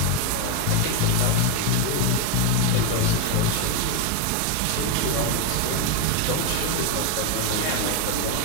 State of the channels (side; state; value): both; different; correlation 0.02